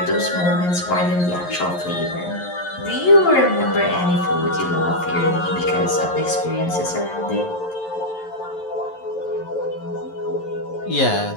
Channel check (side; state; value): right; late; 11 ms